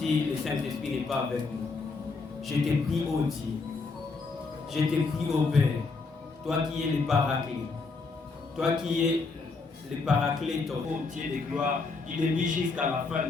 le Saint-Esprit n'est pas avec nous, je te prie, ô Dieu, je te prie, ô Père, toi qui es le Paraclet, toi qui es le Paraclet, ô Dieu de gloire, il est mis jusqu'à la fin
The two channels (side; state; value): right; quieter; 4.1 dB